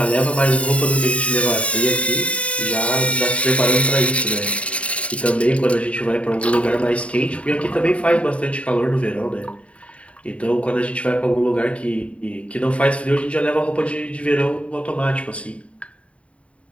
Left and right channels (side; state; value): right; late; 0.064 ms